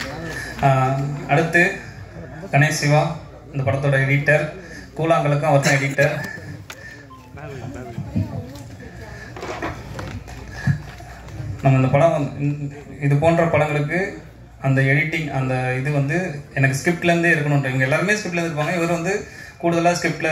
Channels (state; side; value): identical; both; correlation 1.00